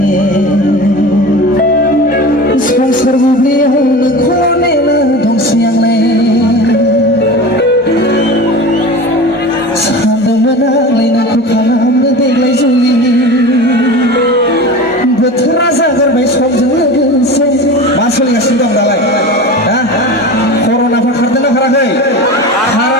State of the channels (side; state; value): both; normal; correlation 0.32